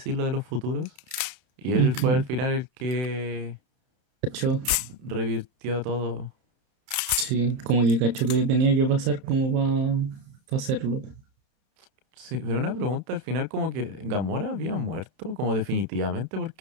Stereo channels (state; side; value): late; left; 30 ms